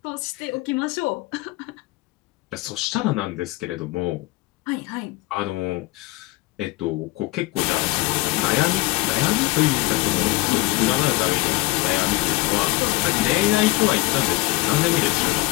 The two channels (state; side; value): quieter; right; 20.6 dB